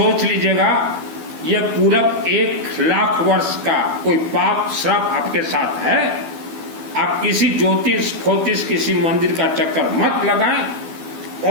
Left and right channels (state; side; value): late; left; 12 ms